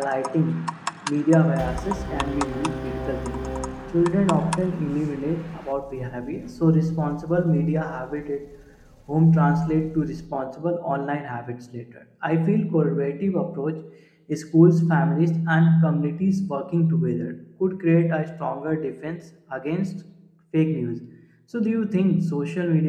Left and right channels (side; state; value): both; identical; correlation 1.00